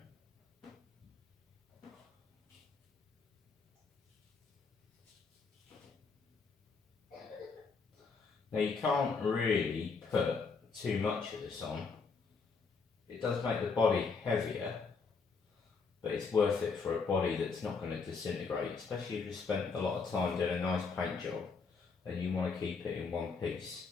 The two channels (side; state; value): right; quieter; 4.9 dB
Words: Now you can't really put too much of this on. It does make the body heavier, but it's worth it for a body that's not going to disintegrate, especially if you've spent a lot of time doing a nice paint job and you want to keep it in one piece.